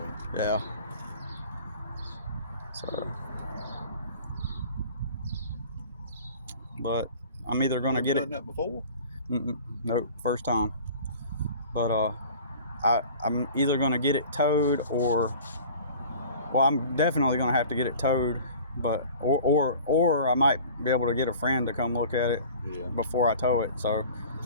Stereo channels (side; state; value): both; inverted; correlation -0.44